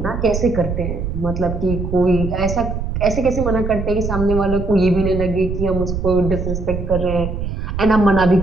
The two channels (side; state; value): right; noise; rumble, 4 dB below the sound